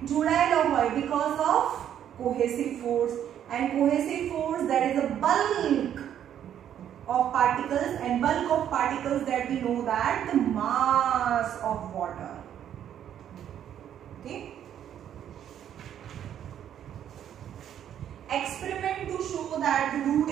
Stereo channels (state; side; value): quieter; left; 10.0 dB